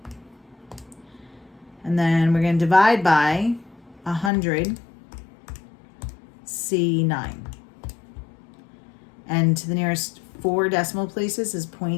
And then we're going to divide by 100, C9. And to the nearest 4 decimal places is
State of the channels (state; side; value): drops out; right; at 4.3 s